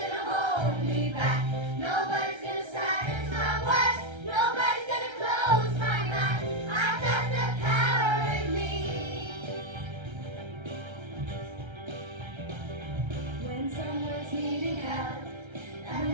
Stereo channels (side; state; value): left; late; 1.3 ms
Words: hold me back, nobody's gonna silence my words, nobody's gonna close my mouth. I got the power in me. When someone's needing help and